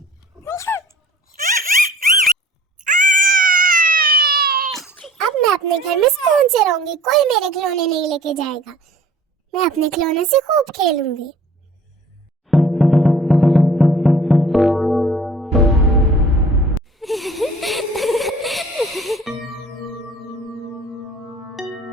अब मैं अपने घर में सुकून से रहूंगी, कोई मेरे खिलौने नहीं लेके जाएगा। मैं अपने खिलौने से खूब खेलूंगी।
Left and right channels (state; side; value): normal; both; correlation 0.49